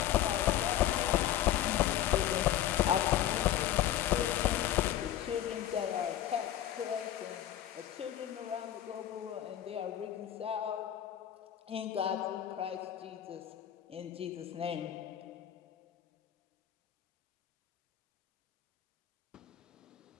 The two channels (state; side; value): quieter; right; 11.8 dB